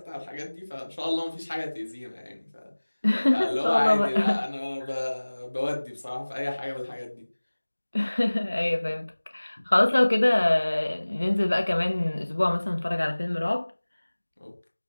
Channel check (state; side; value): inverted; both; correlation -1.00